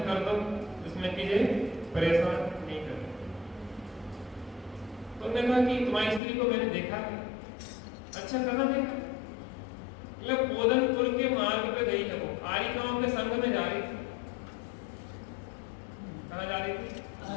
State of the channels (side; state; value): right; drops out; at 6.2 s